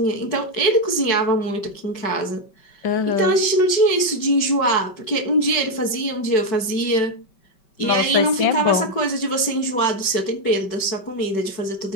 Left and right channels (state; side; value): late; right; 5.2 ms